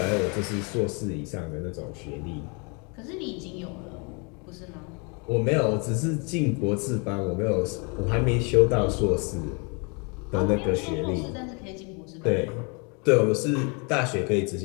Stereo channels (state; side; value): quieter; right; 33.4 dB